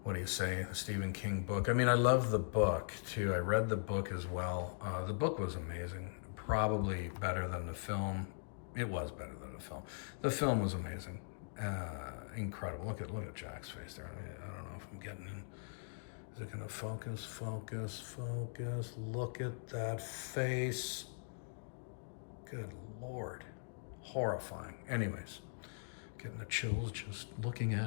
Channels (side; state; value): right; silent; digital silence